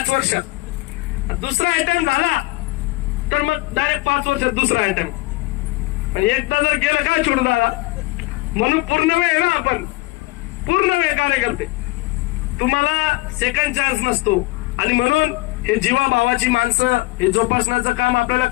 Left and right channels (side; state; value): right; quieter; 21.6 dB